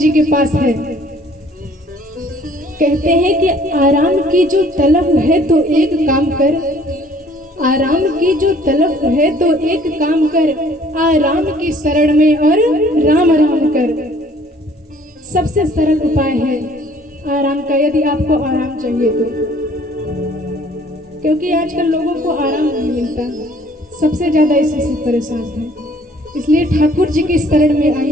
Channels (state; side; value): normal; both; correlation 0.57